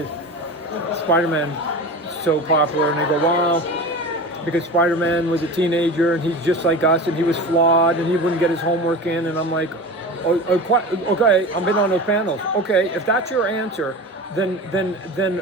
Spider-Man so popular? And they go, well, because Spider-Man was a teenager and he's just like us and he was flawed and he wouldn't get his homework in. And I'm like, okay, I've been on those panels. Okay, if that's your answer, then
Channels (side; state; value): both; normal; correlation 0.31